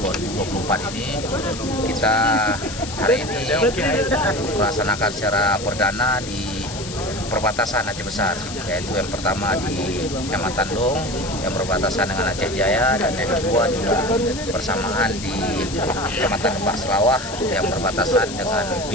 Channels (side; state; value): left; noise; hiss, 11 dB below the sound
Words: ini, kita hari ini melaksanakan secara perdana di perbatasan Aceh Besar, yaitu yang pertama di Kecamatan Dong yang berbatasan dengan Aceh Jaya, dan yang kedua juga bersamaan di Kecamatan Lembah Selawah yang berbatasan dengan